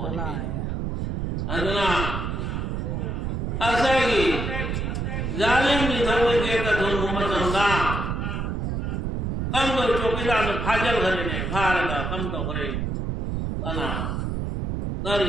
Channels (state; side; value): noise; right; rumble, 2 dB below the sound